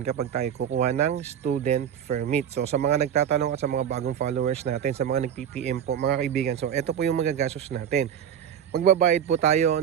kapag tayo kukuha ng student permit? So sa mga nagtatanong at sa mga bagong followers natin, sa mga nag-PPM po mga kaibigan, so ito po yung magagastos natin. Magbabayad po tayo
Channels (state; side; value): quieter; left; 9.1 dB